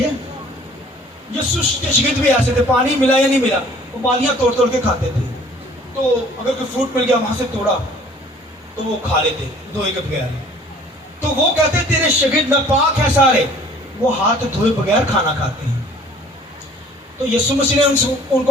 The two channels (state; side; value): normal; both; correlation 0.53